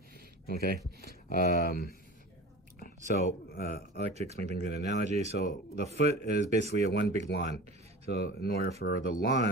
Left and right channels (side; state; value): both; normal; correlation 0.36